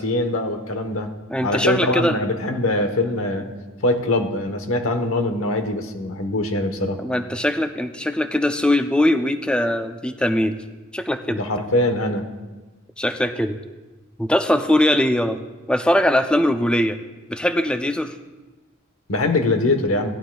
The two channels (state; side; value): normal; both; correlation 0.58